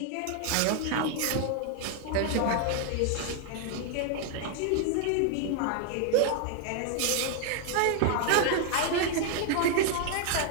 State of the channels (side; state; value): both; different; correlation 0.00